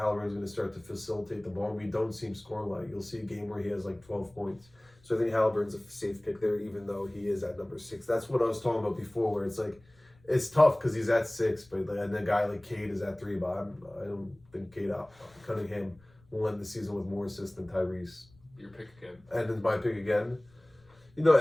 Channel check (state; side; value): noise; left; rumble, 29 dB below the sound